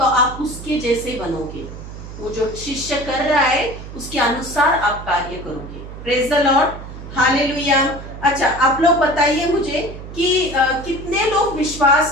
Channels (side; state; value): right; noise; hum, 12 dB below the sound